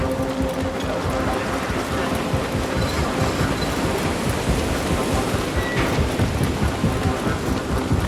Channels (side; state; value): both; identical; correlation 1.00